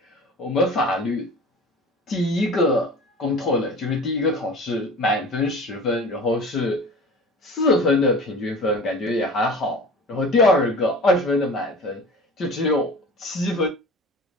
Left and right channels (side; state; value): both; normal; correlation 0.39